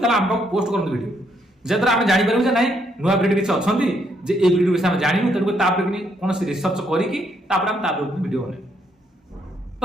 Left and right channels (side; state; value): both; normal; correlation 0.73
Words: आम पाक पोस्ट करूँ वीडियो जहाद्वारा आम जापर जे ना नुआ ब्रीड किसी अच्छा जे ए ब्रीड विषय आम जानू तेणुक कौन रिसर्च करके वीडियो बने